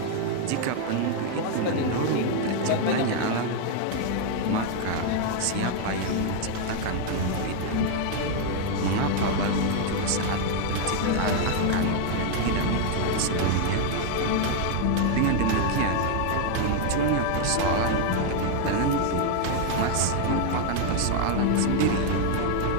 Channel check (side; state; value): both; different; correlation 0.00